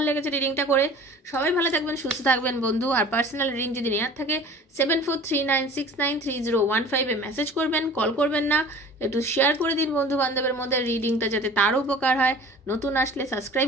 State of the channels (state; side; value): normal; both; correlation 0.44